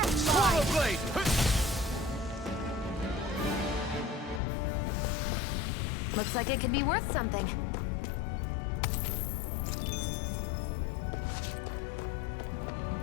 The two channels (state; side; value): drops out; right; at 4.4 s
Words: Swallow mine! blade! Looks like it could be worth something.